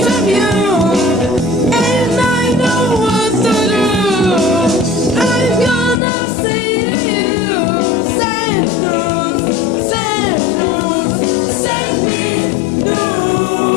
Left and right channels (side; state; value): right; drops out; at 6.0 s